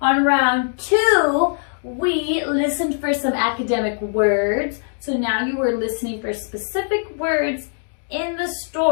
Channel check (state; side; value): silent; right; digital silence